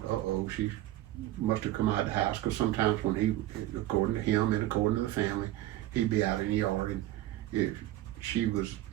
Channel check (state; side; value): quieter; left; 14.9 dB